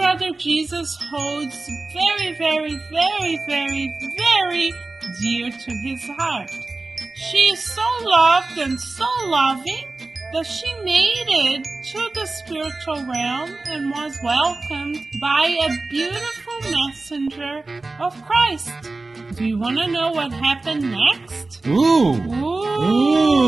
Jesus holds very, very, very, very, very dear to his heart. She is so loved and so loving that she made it to the spiritual realm and was welcomed by a beautiful messenger of Christ. Do you want to know what happened next? Ooh!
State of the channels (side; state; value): left; quieter; 3.4 dB